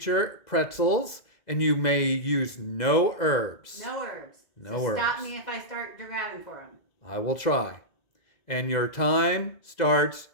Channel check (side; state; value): right; late; 2.0 ms